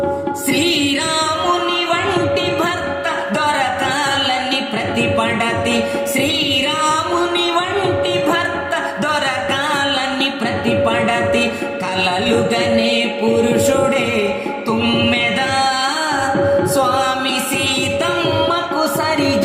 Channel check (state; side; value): identical; both; correlation 1.00